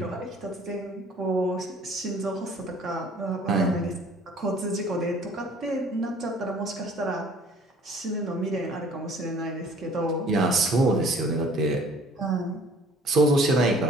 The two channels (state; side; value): normal; both; correlation 0.53